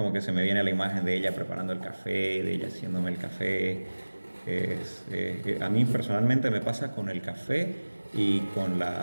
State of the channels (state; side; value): inverted; both; correlation -1.00